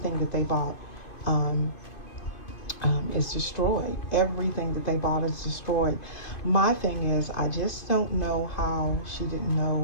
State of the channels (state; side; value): late; right; 2.4 ms